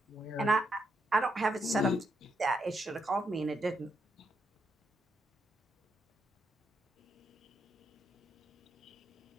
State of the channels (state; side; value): normal; both; correlation 0.80